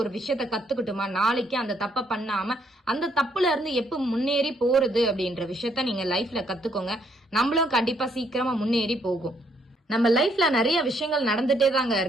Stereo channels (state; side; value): normal; both; correlation 0.70